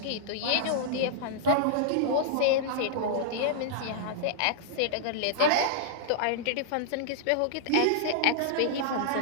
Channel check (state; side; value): different; both; correlation -0.01